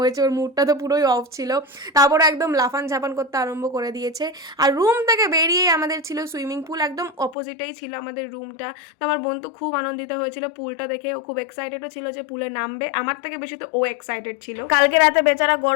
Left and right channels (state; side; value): drops out; right; at 7.4 s